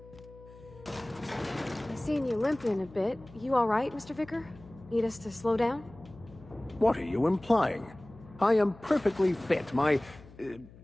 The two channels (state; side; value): noise; left; hum, 21 dB below the sound